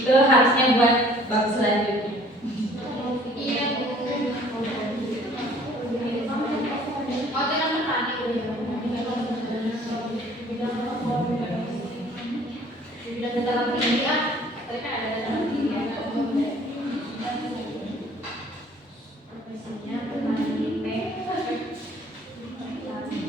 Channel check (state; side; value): normal; both; correlation 0.55